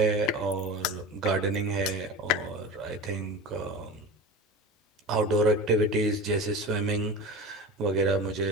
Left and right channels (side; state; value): both; normal; correlation 0.30